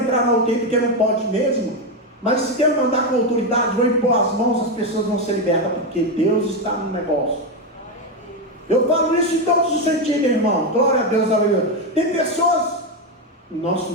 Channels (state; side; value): normal; both; correlation 0.09